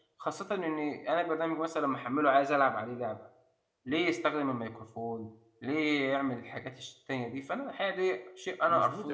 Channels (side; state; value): both; identical; correlation 1.00